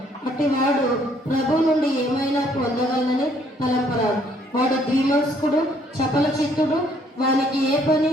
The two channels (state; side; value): normal; both; correlation 0.65